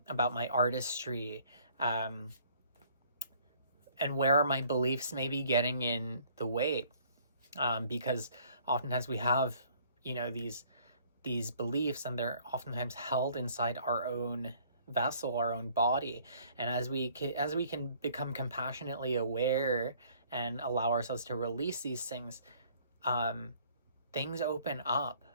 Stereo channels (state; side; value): inverted; both; correlation -0.59